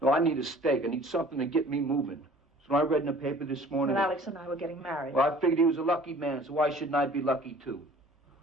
I need a steak. I need something to get me moving. So I read in the paper this morning... Well, Alex and I were getting married. Well, I figured he was a lucky man, so why shouldn't I be lucky too?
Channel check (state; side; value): normal; both; correlation 0.50